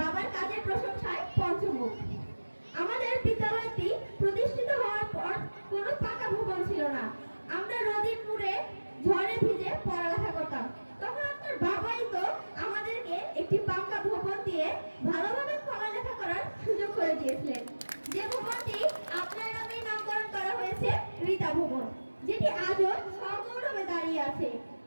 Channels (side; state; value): both; inverted; correlation -1.00